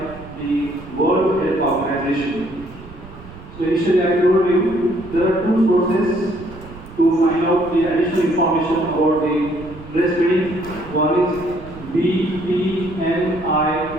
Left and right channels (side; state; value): right; noise; rumble, 17 dB below the sound